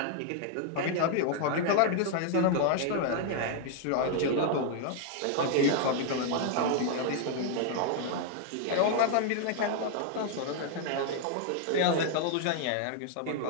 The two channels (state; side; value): different; both; correlation 0.00